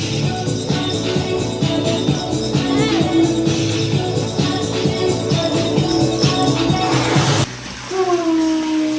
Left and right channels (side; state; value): both; identical; correlation 1.00